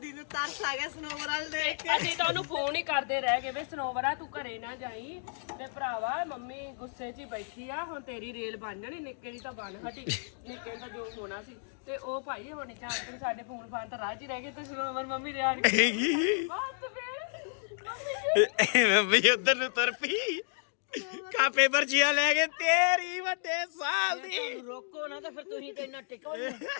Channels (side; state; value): right; silent; digital silence